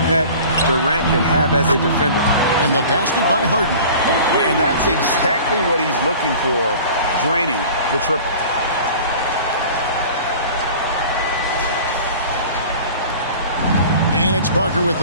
Durant can have as a defender. And the basket by Harden. And that's exactly what he's looking for, draining the triple. And it's Parker with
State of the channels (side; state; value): both; inverted; correlation -0.42